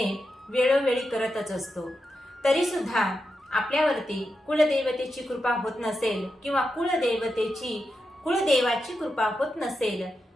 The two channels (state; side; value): normal; both; correlation 0.88